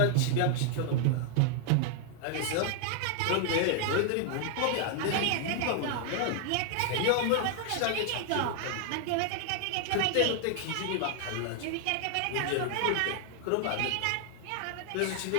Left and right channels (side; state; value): both; different; correlation 0.00